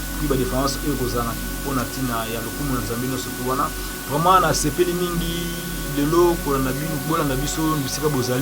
Puis la différence est Rosana pour Natina ya lokumu na Zambino surtout wana vraiment na sepeli mingi lelo ko na binu bola na biso bisika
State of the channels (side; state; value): both; identical; correlation 1.00